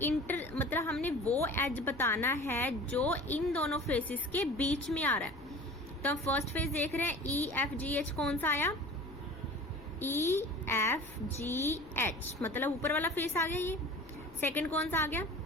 मतलब हमने वो एज बताना है जो इन दोनों फेसेस के बीच में आ रहा है। तो हम फर्स्ट फेस देख रहे हैं, EFGH कौन सा आया, EFGH मतलब ऊपर वाला फेस आ गया ये। सेकंड कौन सा आ गया,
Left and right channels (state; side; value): noise; left; rumble, 22 dB below the sound